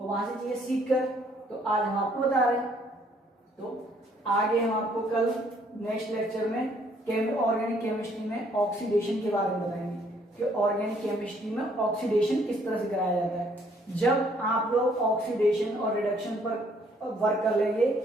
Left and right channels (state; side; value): normal; both; correlation 0.65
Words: वहां से चीजें सीख कर तो आज हम आपको बता रहे हैं। तो आगे हम आपको कल नेक्स्ट लेक्चर में ऑर्गेनिक केमिस्ट्री में ऑक्सीडेशन के बारे में बताएंगे कि ऑर्गेनिक केमिस्ट्री में ऑक्सीडेशन किस तरह से कराया जाता है। जब आप लोग ऑक्सीडेशन और रिडक्शन पर वर्क कर लेंगे,